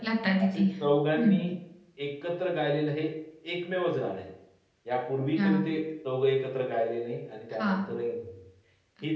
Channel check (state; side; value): identical; both; correlation 1.00